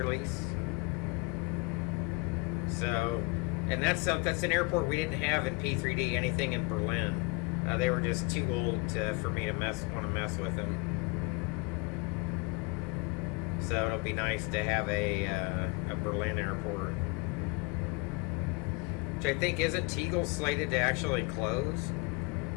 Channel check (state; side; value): quieter; right; 26.7 dB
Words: So, and that's an airport we didn't have in P3D anything in Berlin. They were just too old for me to want to mess with them. So it'll be nice to have a Berlin airport. Which I think, isn't Tegel slated to actually close?